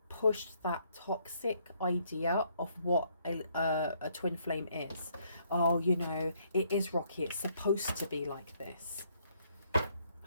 pushed that toxic idea of what a twin flame is. Oh, it is rocky. It's supposed to be like this.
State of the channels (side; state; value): both; inverted; correlation -0.69